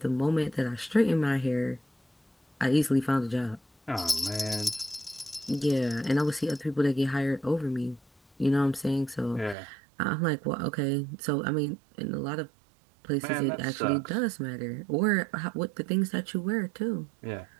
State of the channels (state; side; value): drops out; left; at 9.6 s